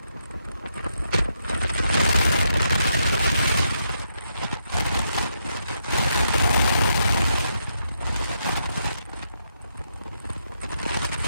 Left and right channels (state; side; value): inverted; both; correlation -0.80